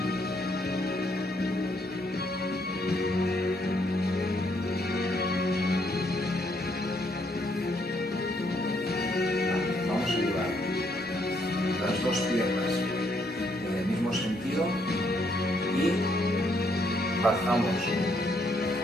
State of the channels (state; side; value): normal; both; correlation 0.72